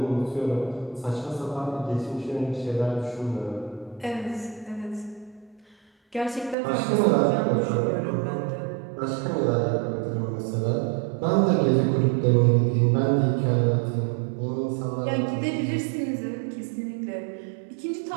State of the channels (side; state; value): left; drops out; at 6.6 s